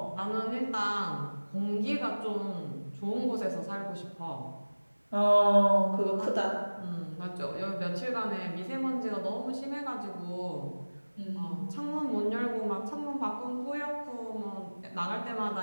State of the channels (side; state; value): both; inverted; correlation -1.00